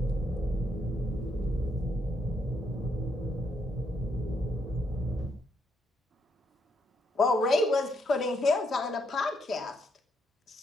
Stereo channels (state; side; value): normal; both; correlation 0.76